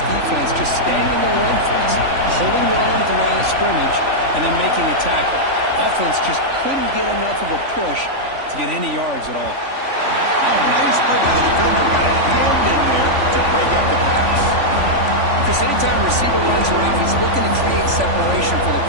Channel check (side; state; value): left; late; 3.5 ms